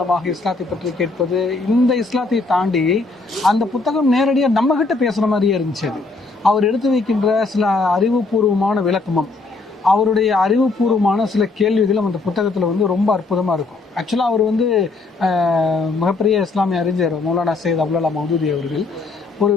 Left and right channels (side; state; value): right; quieter; 3.7 dB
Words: இஸ்லாத்தை பற்றி கேட்பது, இந்த இஸ்லாத்தை தாண்டி அந்த புத்தகம் நேரடியாக நம்மகிட்ட பேசுகிற மாதிரியே இருந்துச்சு. அது அவர் எடுத்து வைக்கின்ற சில அறிவுபூர்வமான விளக்கமும் அவருடைய அறிவுபூர்வமான சில கேள்விகளும் அந்த புத்தகத்தில் ரொம்ப அற்புதமாக இருக்கும். ஆக்சுவலாக அவர் மிகப்பெரிய இஸ்லாமிய அறிஞர் மௌலானா சையத் அப்துல்லா மௌதூதி அவர்கள். ஒரு